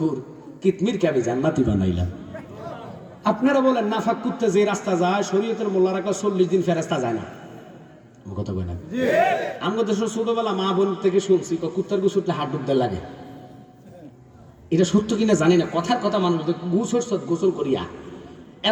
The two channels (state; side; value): identical; both; correlation 1.00